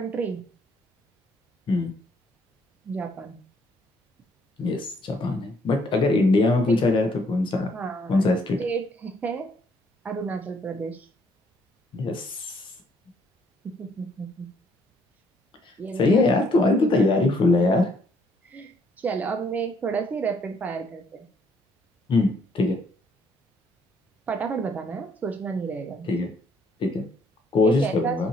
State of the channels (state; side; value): normal; both; correlation 0.67